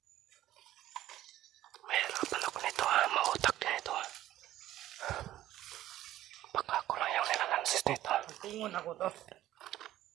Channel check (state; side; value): quieter; left; 13.8 dB